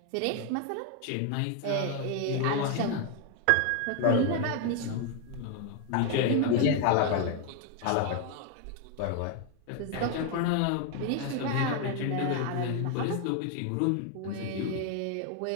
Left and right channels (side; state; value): both; different; correlation 0.01